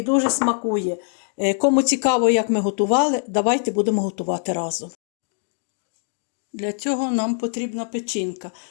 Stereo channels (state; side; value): silent; right; 56 dB below the other